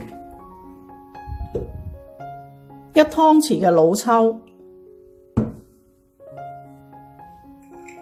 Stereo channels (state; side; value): identical; both; correlation 1.00